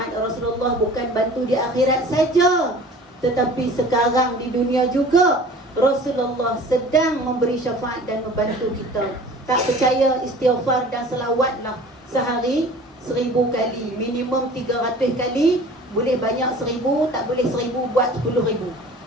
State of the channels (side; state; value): both; normal; correlation 0.45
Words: Rasulullah bukan bantu di akhirat saja, tetapi sekarang di dunia juga Rasulullah sedang memberi syafaat dan membantu kita. Tak percaya, istighfar dan selawatlah sehari 1000 kali. Minimum 300 kali. Boleh banyak 1000, tak boleh 1000 buat 10,000.